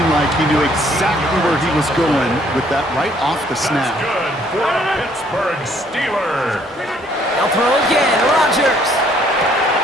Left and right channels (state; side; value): normal; both; correlation 0.64